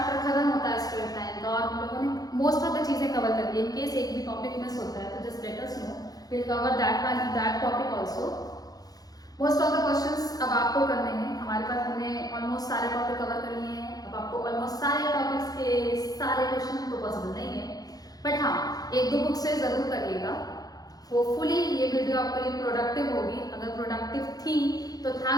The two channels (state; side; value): late; right; 0.18 ms